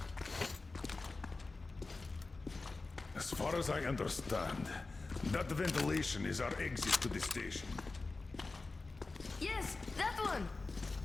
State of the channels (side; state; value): right; quieter; 3.6 dB